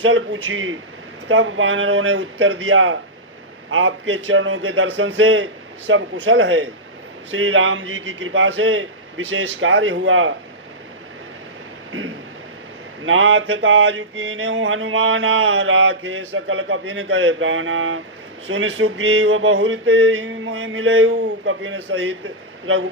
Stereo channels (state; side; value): normal; both; correlation -0.11